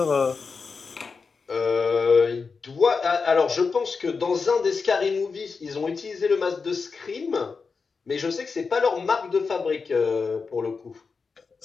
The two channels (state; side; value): quieter; right; 4.9 dB